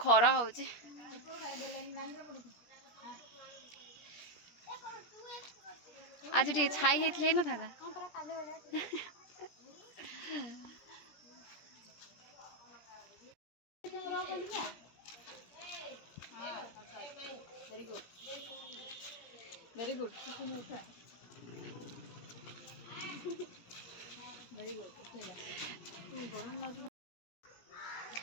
ଖରା ହଉଛି ଆଜି ଟିକେ ଛାଇ ହେଇଥିଲେ ହେଇନଥାନ୍ତା very good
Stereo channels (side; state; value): right; late; 17 ms